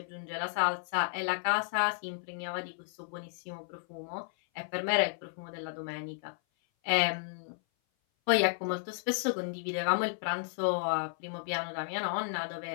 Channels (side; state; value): right; silent; 56 dB below the other